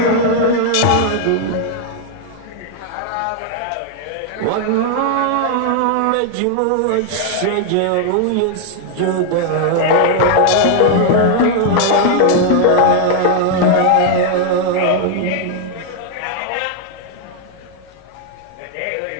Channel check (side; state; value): both; different; correlation 0.00